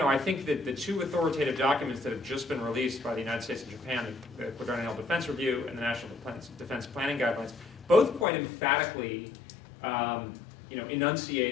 I think that the 2 authoritative documents that have just been released by the United States and Japan, the Quadrennial Defense Review and the National Defense Planning Guidelines, both quite emphatically you know,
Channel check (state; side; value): drops out; right; at 8.2 s